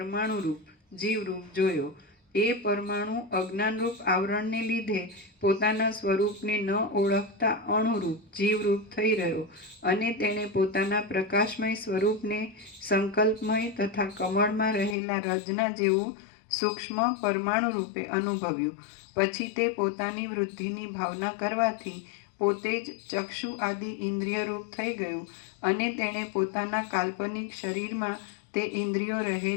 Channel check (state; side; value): drops out; right; at 15.0 s